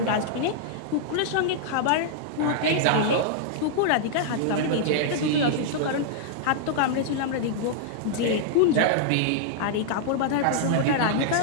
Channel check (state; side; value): different; both; correlation -0.01